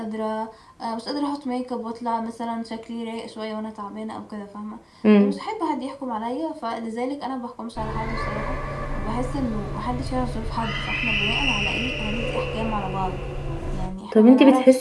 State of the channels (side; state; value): both; identical; correlation 1.00